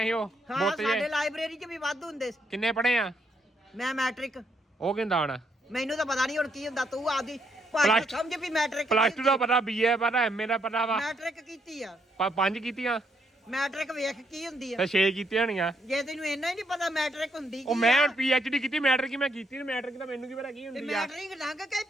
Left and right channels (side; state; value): both; normal; correlation 0.75